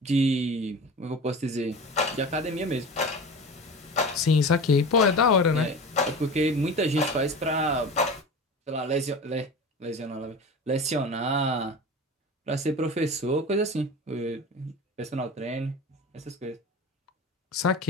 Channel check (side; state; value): both; normal; correlation 0.33